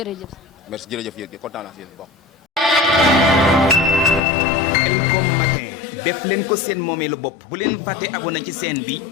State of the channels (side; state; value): right; drops out; at 4.2 s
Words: merci jërëjëf yéen kontaan naa si yéen bokk. Khelcom matin def leen ko seen moomeelu bopp bu leen fàtte abonné ci chaîne bi